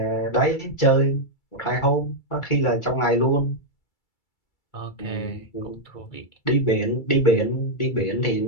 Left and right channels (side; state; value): right; late; 2.3 ms